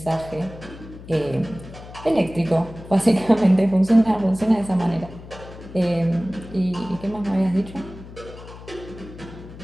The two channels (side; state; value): left; noise; hum, 16 dB below the sound